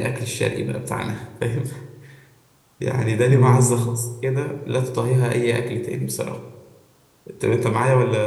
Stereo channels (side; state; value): both; identical; correlation 1.00